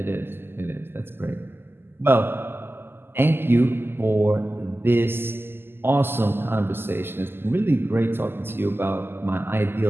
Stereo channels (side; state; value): left; late; 0.11 ms